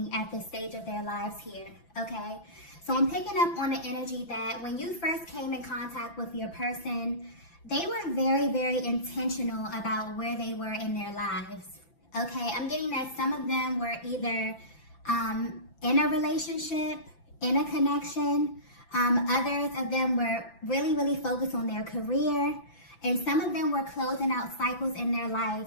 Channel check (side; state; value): right; late; 5.9 ms